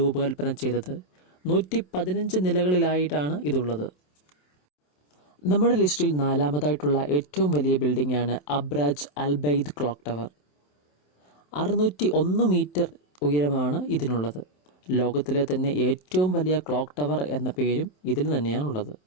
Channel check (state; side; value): late; right; 27 ms